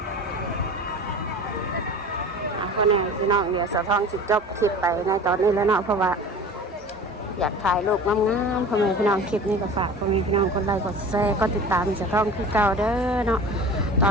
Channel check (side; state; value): both; normal; correlation 0.38